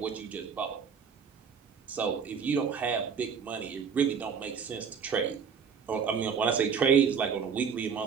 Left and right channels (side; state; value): left; quieter; 6.5 dB